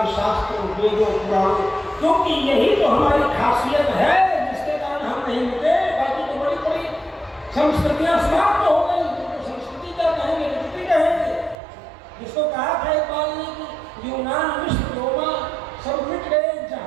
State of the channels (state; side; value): drops out; left; at 11.6 s